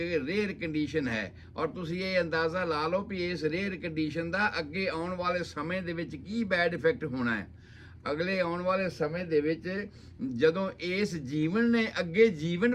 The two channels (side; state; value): both; identical; correlation 1.00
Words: ਰੇਅਰ ਕੰਡੀਸ਼ਨ ਹੈ ਔਰ ਤੁਸੀਂ ਇਹ ਅੰਦਾਜ਼ਾ ਲਾ ਲਓ ਵੀ ਇਸ ਰੇਅਰ ਕੰਡੀਸ਼ਨ ਦਾ ਅੱਗੇ ਆਉਣ ਵਾਲੇ ਸਮੇਂ ਦੇ ਵਿੱਚ ਕੀ ਬੈਡ ਇਫੈਕਟ ਹੋਣਾ ਹੈ। ਅਗਲੇ ਆਉਣ ਵਾਲੇ ਸਮੇਂ ਦੇ ਵਿੱਚ ਜਦੋਂ ਇਸ ਜੀਵਨ ਨੇ ਅੱਗੇ